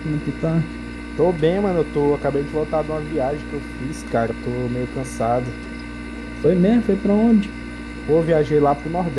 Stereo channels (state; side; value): identical; both; correlation 1.00